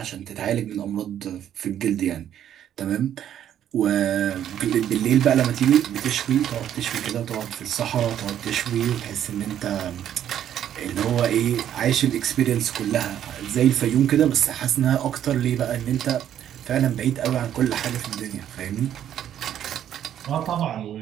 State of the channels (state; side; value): quieter; left; 10.5 dB